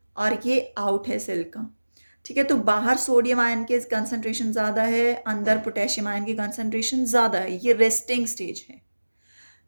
और ये out है cell का. ठीक है, तो बाहर सोडियम आयन के कंसंट्रेशन ज़्यादा है, अंदर पोटेशियम आयन की कंसंट्रेशन ज़्यादा है. ये रेस्टिंग स्टेज है.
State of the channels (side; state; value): both; inverted; correlation -1.00